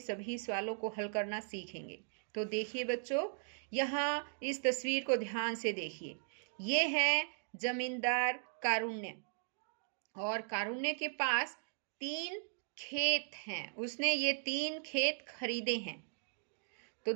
सवालों को हल करना सीखेंगे। तो देखिए बच्चों, यहाँ इस तस्वीर को ध्यान से देखिए। ये है जमींदार कारुण्य और कारुण्य के पास 3 खेत हैं। उसने ये 3 खेत खरीदे हैं। तो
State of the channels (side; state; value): left; silent; digital silence